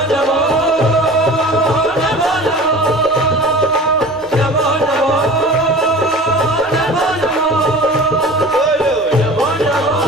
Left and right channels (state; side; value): normal; both; correlation 0.40